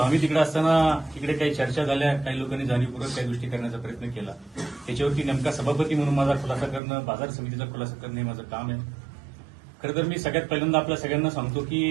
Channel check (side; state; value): left; drops out; at 6.8 s